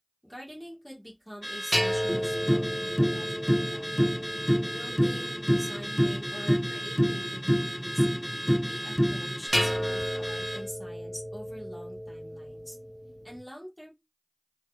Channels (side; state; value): both; identical; correlation 1.00